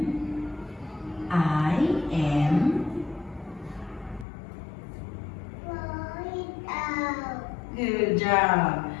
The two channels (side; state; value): right; drops out; at 4.2 s